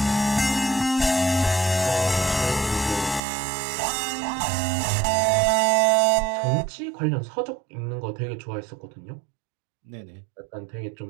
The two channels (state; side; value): drops out; left; at 3.2 s